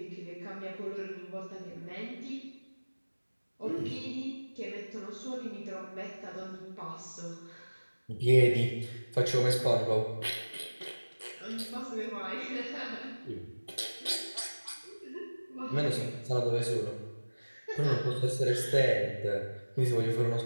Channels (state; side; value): inverted; both; correlation -1.00